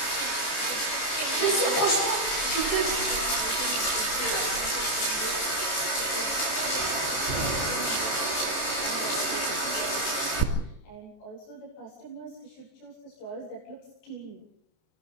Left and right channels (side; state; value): right; late; 29 ms